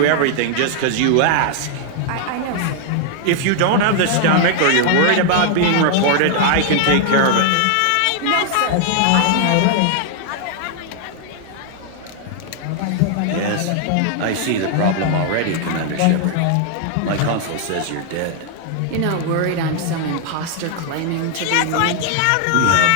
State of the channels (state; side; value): different; both; correlation 0.00